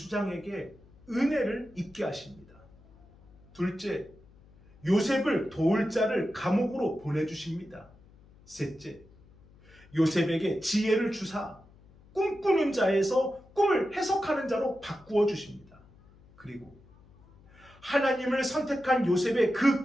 은혜를 입게 하십니다. 둘째, 요셉을 도울 자를 감옥으로 보내주십니다. 셋째, 요셉에게 지혜를 주사 꿈꾸는 자에서 꿈을 해석하는 자로 바꾸어 주십니다. 그리고 하나님을 선택한 요셉의 그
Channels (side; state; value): left; noise; hum, 26 dB below the sound